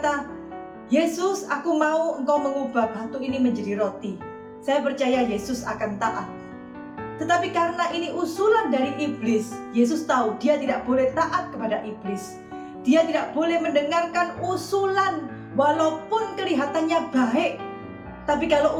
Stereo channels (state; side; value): identical; both; correlation 1.00